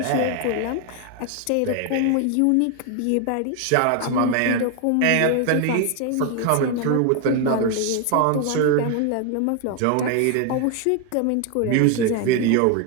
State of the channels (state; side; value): different; both; correlation 0.01